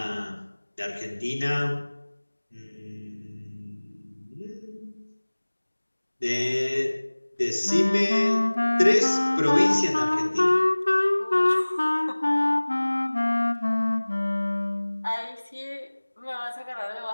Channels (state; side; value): inverted; both; correlation -1.00